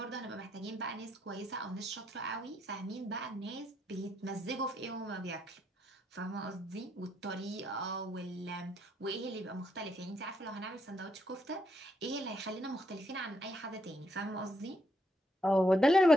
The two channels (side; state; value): both; normal; correlation 0.76